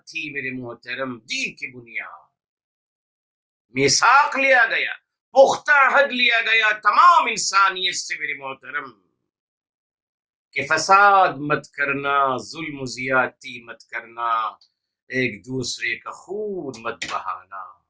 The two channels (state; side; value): identical; both; correlation 1.00